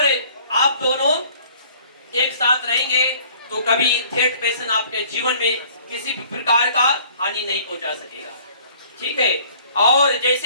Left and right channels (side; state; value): both; inverted; correlation -0.54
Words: आप दोनों एक साथ रहेंगे तो कभी थर्ड पर्सन आपके जीवन में किसी भी प्रकार का हानि नहीं पहुंचा सकेगा, ठीक है। और